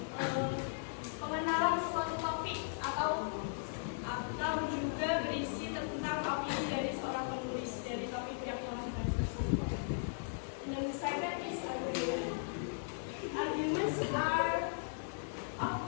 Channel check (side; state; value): right; silent; digital silence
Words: pengenalan suatu topik atau juga berisi tentang opini dari seorang penulis dari topik yang telah dibahas tersebut. And then the second is argument. Arguments